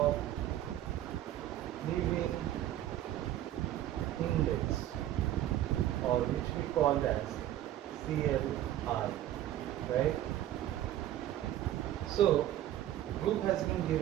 living index, or which we call as CLI, right? So group has been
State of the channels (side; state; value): left; quieter; 12.7 dB